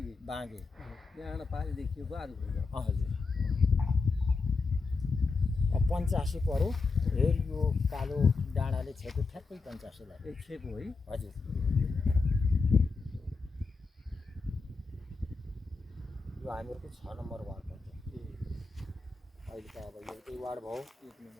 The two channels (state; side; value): quieter; right; 4.3 dB